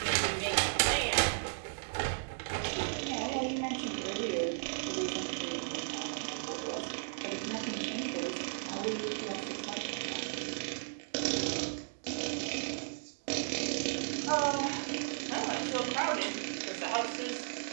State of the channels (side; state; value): left; silent; digital silence